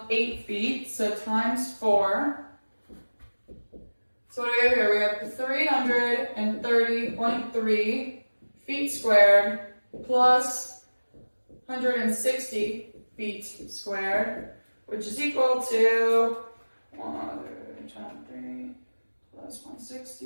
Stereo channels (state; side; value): inverted; both; correlation -1.00